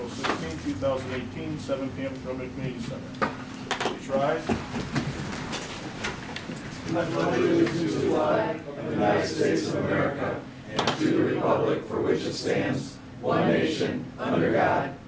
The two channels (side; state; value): both; identical; correlation 1.00